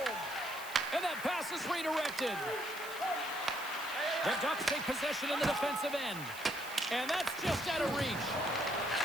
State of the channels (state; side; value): noise; right; hiss, 14 dB below the sound